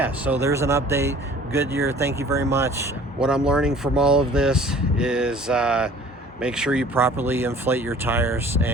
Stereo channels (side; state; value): both; normal; correlation 0.49